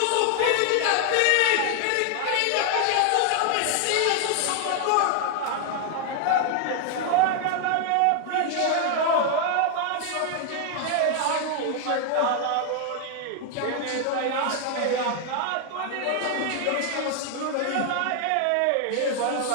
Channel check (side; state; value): both; different; correlation 0.00